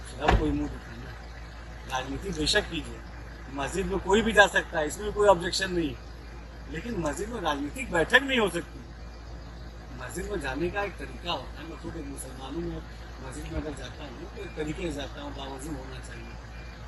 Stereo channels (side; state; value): both; identical; correlation 1.00